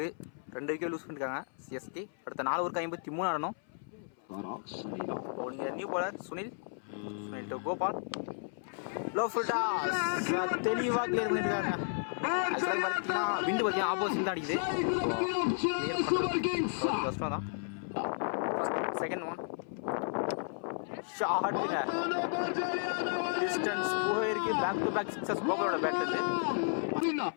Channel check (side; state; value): right; silent; 55 dB below the other